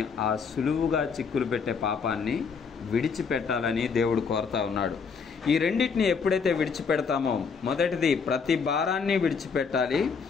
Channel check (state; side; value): quieter; right; 5.6 dB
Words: ఆ సులువుగా చిక్కులు పెట్టే పాపాన్ని విడిచిపెట్టాలని దేవుడు కోరుతా ఉన్నాడు. ఈ రెండింటిని ఎప్పుడైతే విడిచిపెడతామో, మొదటిది ప్రతి భారాన్ని విడిచిపెట్టాలి,